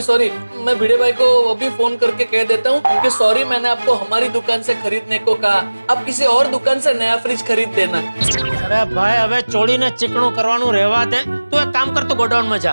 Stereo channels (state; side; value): inverted; both; correlation -1.00